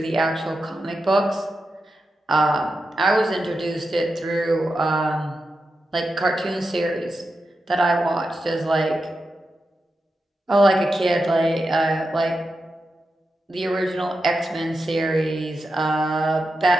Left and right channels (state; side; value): normal; both; correlation 0.89